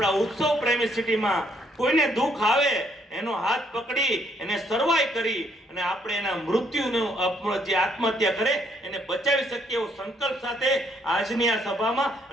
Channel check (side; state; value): both; normal; correlation 0.69